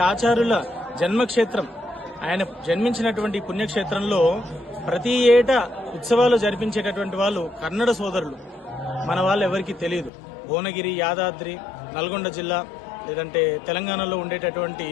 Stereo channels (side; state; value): right; drops out; at 10.1 s